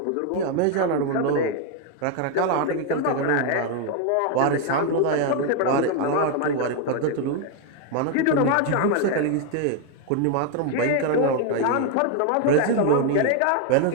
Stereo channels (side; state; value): both; different; correlation 0.01